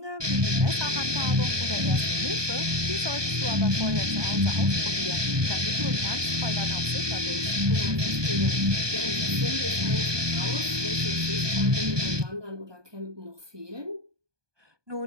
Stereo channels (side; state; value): left; late; 1.2 ms